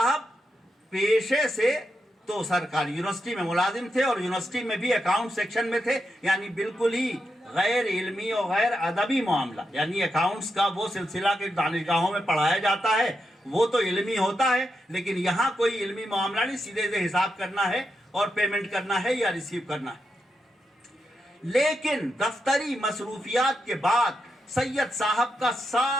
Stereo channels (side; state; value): both; normal; correlation 0.85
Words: پیشے سے تو سرکاری یونیورسٹی میں ملازم تھے اور یونیورسٹی میں بھی اکاؤنٹ سیکشن میں تھے, یعنی بالکل ہی غیر علمی اور غیر ادبی معاملہ. یعنی اکاؤنٹس کا وہ سلسلہ کہ دانشگاہوں میں پڑھایا جاتا ہے وہ تو علمی ہوتا ہے, لیکن یہاں کوئی علمی معاملہ نہیں, سیدھے سے حساب کرنا ہے اور پیمنٹ کرنا ہے یا ریسیو کرنا ہے. لیکن دفتری مصروفیات کے بعد سید صاحب کا